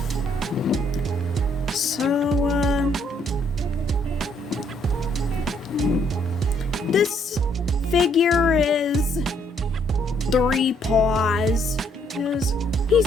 So, this figure is 3 paws.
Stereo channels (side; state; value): both; normal; correlation 0.69